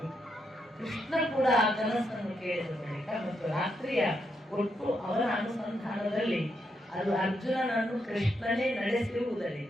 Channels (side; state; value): both; normal; correlation 0.81